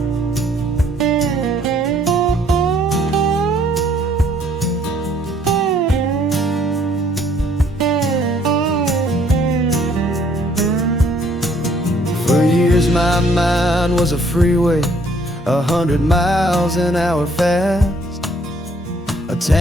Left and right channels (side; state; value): both; normal; correlation 0.63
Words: For years my mind was a freeway, 100 miles an hour fast, a